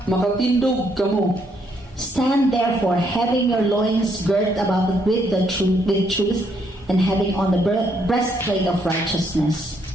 makatindog kamo. Stand therefore, having your loins girt about with truth, and having on the breastplate of righteousness.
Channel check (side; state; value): both; normal; correlation 0.72